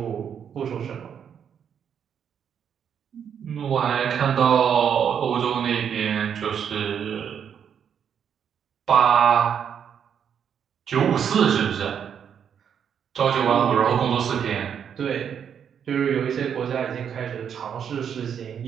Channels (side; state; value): left; quieter; 8.0 dB